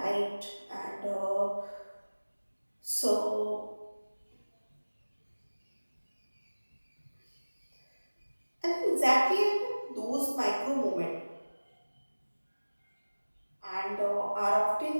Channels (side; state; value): both; inverted; correlation -1.00